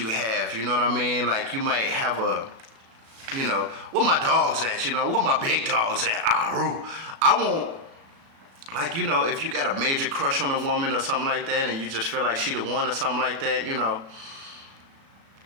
have, you know what I mean? Like, you might have a, you know, where my dog's at, you know, where my big dog's at, I want, like, you know, if you got a major crush on a woman or something like that, and you just feel like she the one or something like that, you know,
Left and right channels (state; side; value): late; left; 36 ms